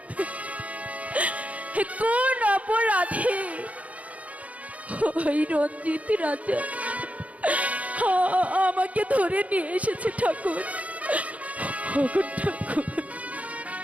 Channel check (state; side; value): late; left; 0.068 ms